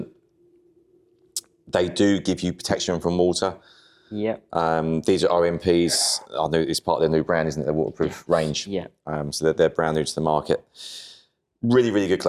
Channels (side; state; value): both; identical; correlation 1.00